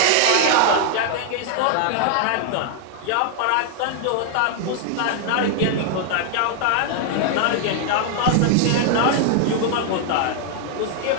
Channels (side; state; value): both; different; correlation 0.00